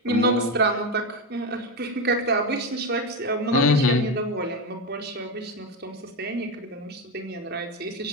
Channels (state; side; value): normal; both; correlation 0.13